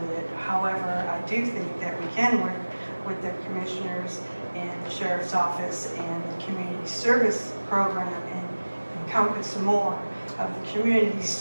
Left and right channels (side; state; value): both; inverted; correlation -1.00